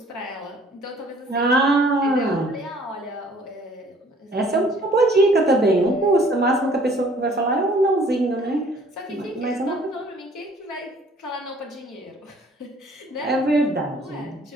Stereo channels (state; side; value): normal; both; correlation 0.57